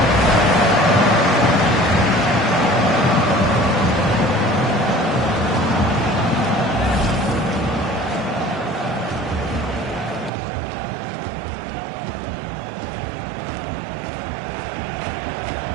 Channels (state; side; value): drops out; left; at 10.3 s